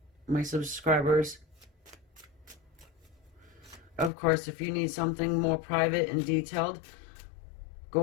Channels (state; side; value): drops out; right; at 4.1 s